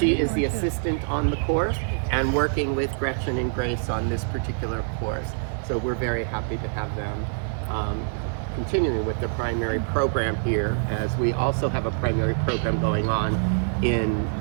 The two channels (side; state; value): left; silent; digital silence